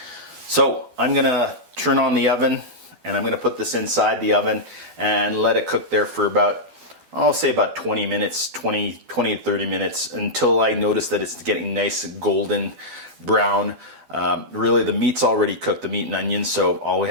So I'm gonna turn on the oven and I'm gonna put this inside the oven and let it cook there for about, I'll say about 20 minutes, 20 to 30 minutes, until I notice that it's getting nice golden brown. Really the meat's already cooked, the meat and onions, so all we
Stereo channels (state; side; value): late; left; 12 ms